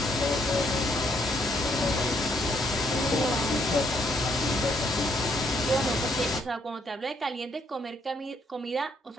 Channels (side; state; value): both; normal; correlation 0.71